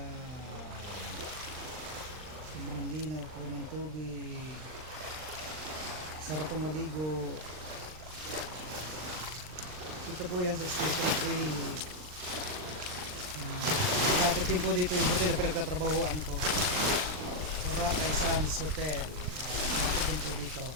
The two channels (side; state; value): left; late; 39 ms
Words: sobrang linaw po ng tubig, sarap pong maligo. Ito po yan sa Station 3. Lapit din po dito yung hotel na pinagtatrabahuan ko, Boracay Sands Hotel. Lapit din po dito.